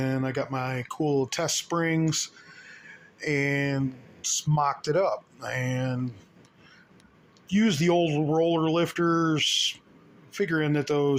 I got my cool test springs and mocked it up and used the old roller lifters, figuring that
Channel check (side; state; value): both; identical; correlation 1.00